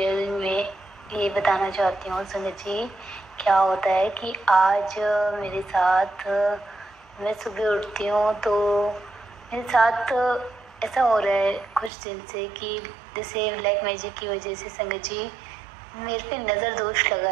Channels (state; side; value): drops out; left; at 11.9 s